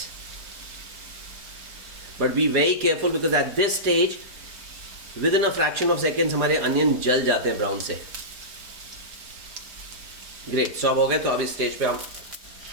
But be very careful because at this stage, within a fraction of seconds हमारे अनियन जल जाते हैं ब्राउन से. ग्रेट. सो अब हो गए. तो अब इस स्टेज पे हम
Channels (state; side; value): late; left; 4.9 ms